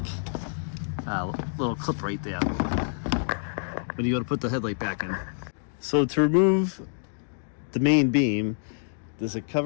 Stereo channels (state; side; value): silent; right; digital silence